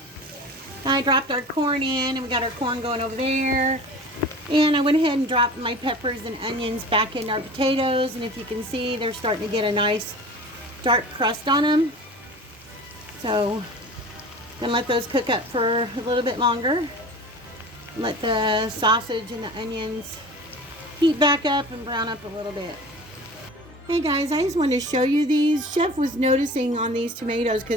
I dropped our corn in, and we got our corn going over there. And I went ahead and dropped my peppers and onions back in our potatoes. And if you can see, they're starting to get a nice dark crust on them. So I'm gonna let those cook up for a little bit longer. Let the sausage and the onions heat back up and brown up a little bit. Hey guys, I just wanted to show you these. Chef was noticing on these tomatoes,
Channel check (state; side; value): normal; both; correlation 0.38